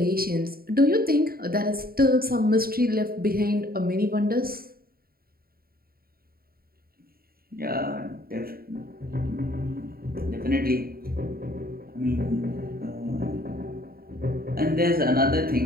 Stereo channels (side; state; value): left; late; 0.43 ms